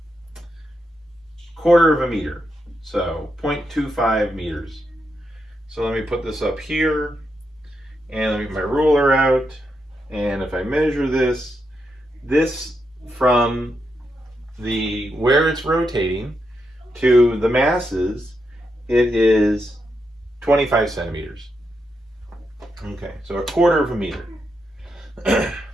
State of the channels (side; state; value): both; normal; correlation 0.83